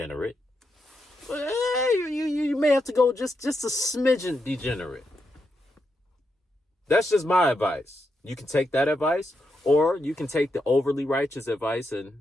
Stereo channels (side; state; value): both; normal; correlation 0.84